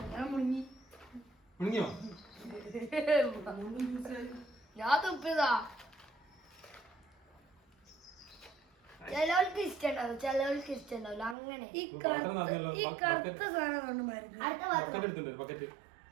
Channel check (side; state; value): left; drops out; at 11.4 s